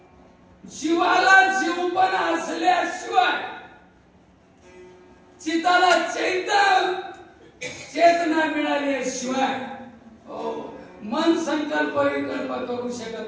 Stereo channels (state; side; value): identical; both; correlation 1.00